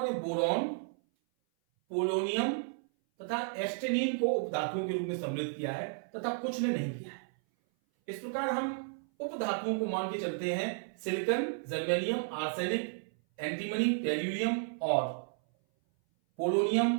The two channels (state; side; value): silent; left; 56 dB below the other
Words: ने बोरॉन, पोलोनियम तथा एस्टेनिन को उपधातुओं के रूप में सम्मिलित किया है तथा कुछ ने नहीं किया है। इस प्रकार हम उपधातुओं को मान के चलते हैं silicon, germanium, arsenic, antimony, tellurium और